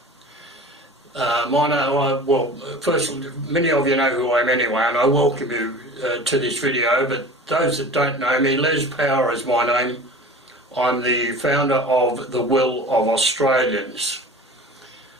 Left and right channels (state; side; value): normal; both; correlation 0.39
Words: First, many of you know who I am anyway, and I welcome you to this video, but those that don't know me, Les Power is my name. I'm the founder of The Will of Australians.